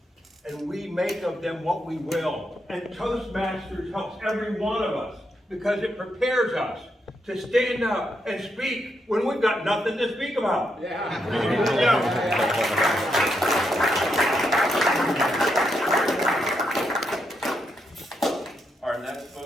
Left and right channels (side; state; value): both; normal; correlation 0.81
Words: and we make of them what we will. And Toastmasters helps every one of us because it prepares us to stand up and speak when we've got nothing to speak about. Our next